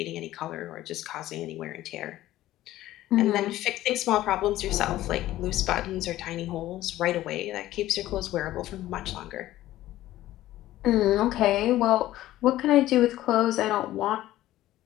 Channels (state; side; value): quieter; right; 14.9 dB